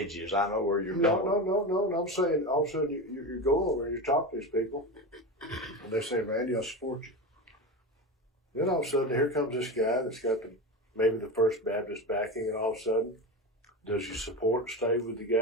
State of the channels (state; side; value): normal; both; correlation 0.23